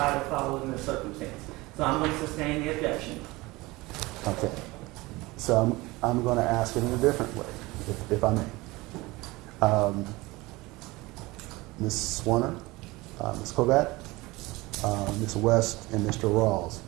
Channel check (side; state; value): left; quieter; 21.5 dB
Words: or followed in the circumstance. So I'm going to sustain the objection. Okay. So I'm going to ask it in a different way, if I may. Ms. Zwerner, Ms. Kovac, Ms. West, and Mr. Rawls,